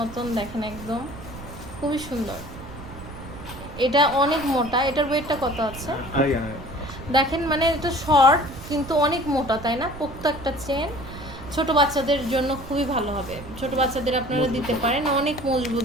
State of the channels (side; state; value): right; noise; rumble, 14 dB below the sound